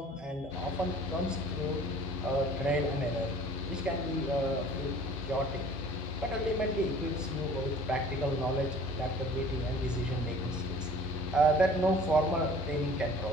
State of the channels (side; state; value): both; normal; correlation 0.49